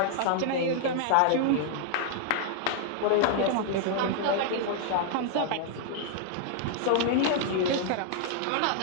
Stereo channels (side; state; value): both; different; correlation -0.01